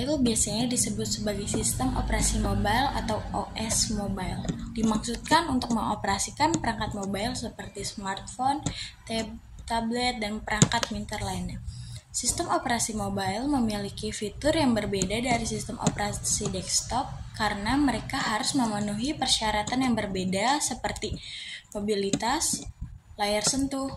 biasanya disebut sebagai sistem operasi mobile atau OS mobile. Dimaksudkan untuk mengoperasikan perangkat mobile seperti smartphone, tablet, dan perangkat pintar lainnya. Sistem operasi mobile memiliki fitur yang berbeda dari sistem operasi desktop karena mereka harus memenuhi persyaratan yang berbeda seperti mobilitas, layar sentuh,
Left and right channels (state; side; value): identical; both; correlation 1.00